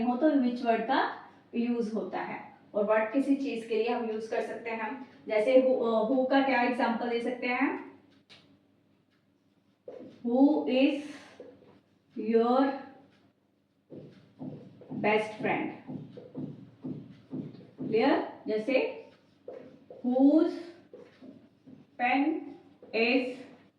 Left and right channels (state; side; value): identical; both; correlation 1.00